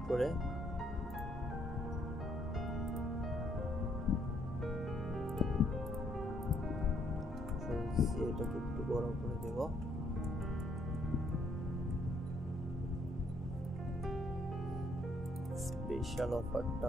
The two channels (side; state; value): both; normal; correlation 0.70